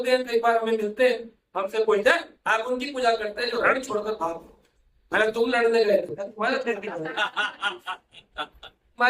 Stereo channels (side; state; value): both; identical; correlation 1.00